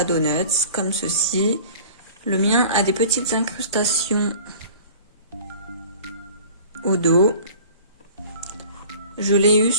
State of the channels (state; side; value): inverted; both; correlation -0.44